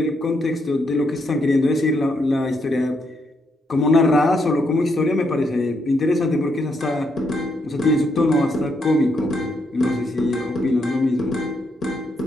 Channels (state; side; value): normal; both; correlation 0.77